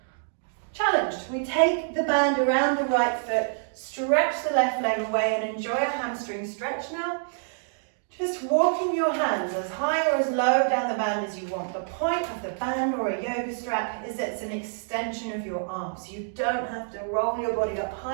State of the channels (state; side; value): silent; left; digital silence